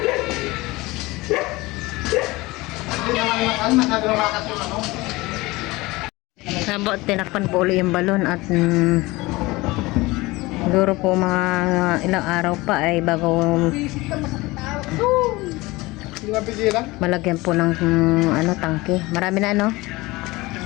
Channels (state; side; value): quieter; right; 21.4 dB